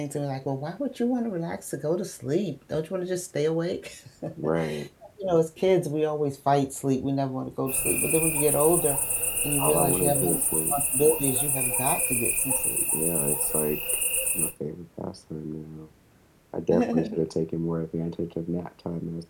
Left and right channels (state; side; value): identical; both; correlation 1.00